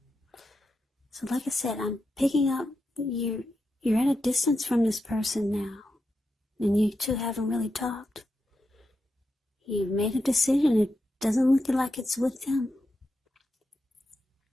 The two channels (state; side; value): normal; both; correlation 0.87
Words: So like I said, I'm picking up, you're at a distance from this person now. And you two haven't really talked. You've made a decision. It doesn't look like it's with them.